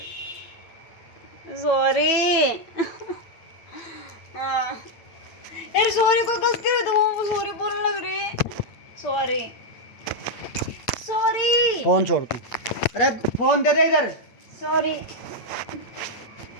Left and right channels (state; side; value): late; right; 8.9 ms